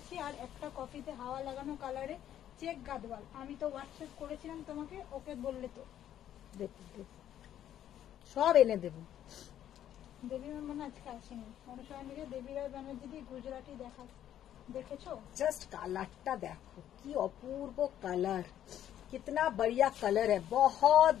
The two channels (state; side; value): quieter; right; 11.1 dB